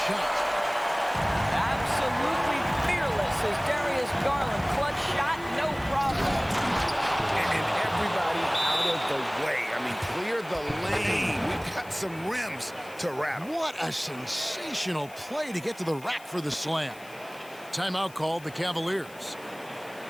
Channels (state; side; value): noise; left; hiss, 22 dB below the sound